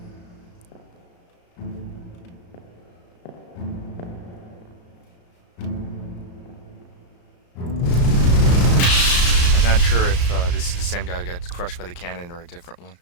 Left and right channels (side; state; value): right; late; 34 ms